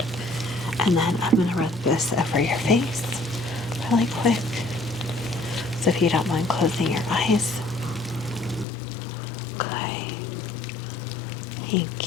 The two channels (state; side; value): drops out; right; at 8.7 s